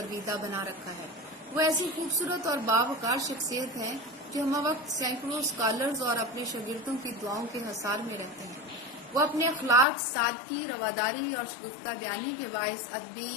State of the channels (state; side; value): drops out; right; at 9.9 s